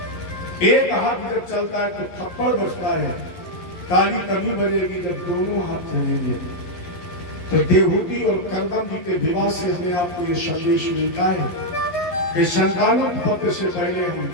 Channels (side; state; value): right; late; 11 ms